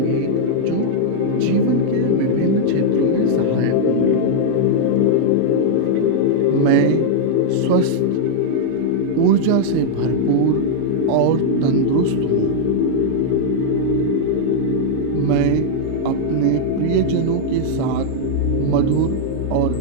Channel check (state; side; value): different; both; correlation -0.01